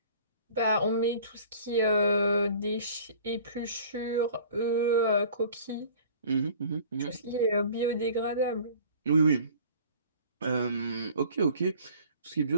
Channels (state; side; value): inverted; both; correlation -0.47